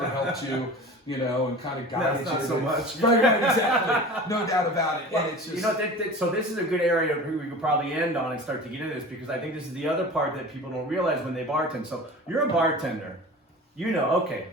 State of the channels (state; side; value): normal; both; correlation 0.37